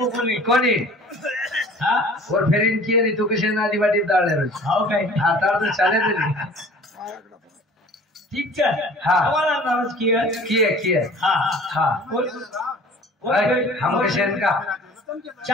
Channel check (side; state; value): both; normal; correlation 0.47